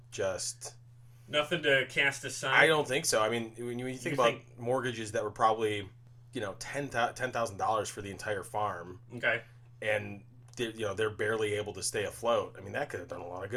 just... Nothing to cast aside? I don't think so. I mean, when you think about mortgages that were probably, $10,000 for the entire farm. Okay. And, they're barely able to stay afloat. I mean, that could have done a lot of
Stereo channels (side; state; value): both; identical; correlation 1.00